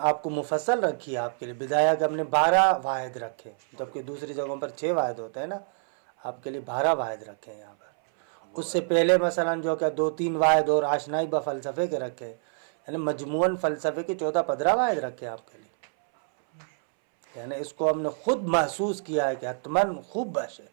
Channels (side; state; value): left; silent; 60 dB below the other